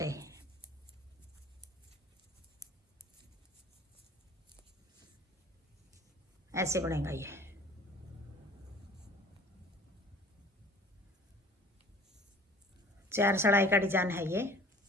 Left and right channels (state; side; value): normal; both; correlation 0.48